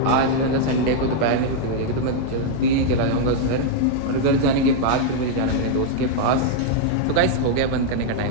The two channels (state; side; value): different; both; correlation -0.01